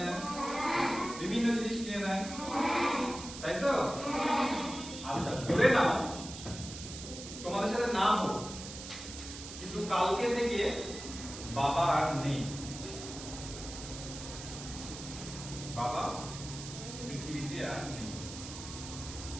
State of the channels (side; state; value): right; noise; hiss, 11 dB below the sound